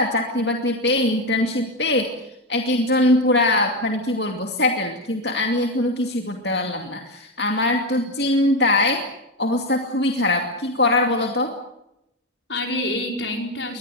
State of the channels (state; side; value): normal; both; correlation 0.11